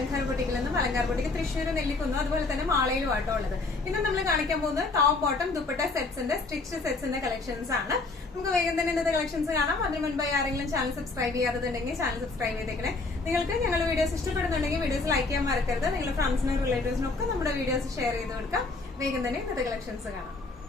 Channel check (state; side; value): quieter; right; 3.6 dB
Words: ബൊട്ടിക്കിൽ നിന്നും അലങ്കാർ ബൊട്ടിക്ക് തൃശ്ശൂർ നെല്ലിക്കുന്നു, അതുപോലെ തന്നെ മാളയിലും ആട്ടോ ഉള്ളത്. ഇന്ന് നമ്മൾ കാണിക്കാൻ പോകുന്നത് ടോപ്പ് ബോട്ടം ദുപ്പട്ട സെറ്റ്സിന്റെ സ്റ്റിച്ച് സെറ്റ്സിന്റെ കളക്ഷൻസ് ആണ്. നമുക്ക് വേഗം തന്നെ ഇന്നത്തെ കളക്ഷൻസ് കാണാം. അതിന് മുൻപായി ആരെങ്കിലും ചാനൽ സബ്സ്ക്രൈബ് ചെയ്യാത്തതുണ്ടെങ്കിൽ ചാനൽ സബ്സ്ക്രൈബ് ചെയ്തേക്കണേ. നിങ്ങൾക്ക് ഞങ്ങളുടെ വീഡിയോസ് ഇഷ്ടപ്പെടുന്നുണ്ടെങ്കിൽ വീഡിയോസ് ലൈക്ക് ചെയ്യാൻ മറക്കരുത്. നിങ്ങളുടെ ഫ്രണ്ട്സിനും റിലേറ്റീവ്സിനും ഒക്കെ നമ്മുടെ വീഡിയോസ് ഷെയർ ചെയ്ത് കൊടുക്കാം. വേഗം തന്നെ ഇന്നത്തെ കളക്ഷൻസ് കാണാം.